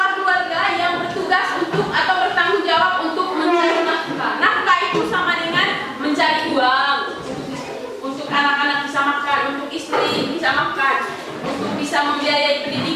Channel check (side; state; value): both; identical; correlation 1.00